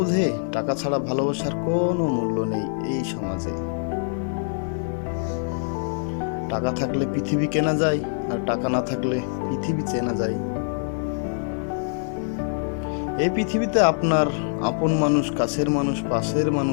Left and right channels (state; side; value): silent; right; digital silence